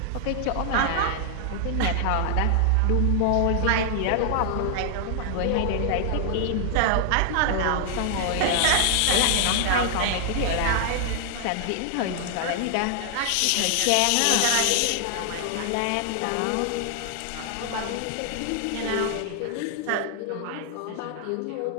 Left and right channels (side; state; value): both; different; correlation 0.00